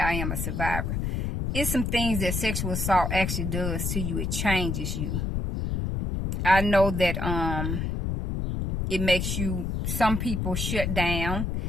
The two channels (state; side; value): noise; left; rumble, 1 dB below the sound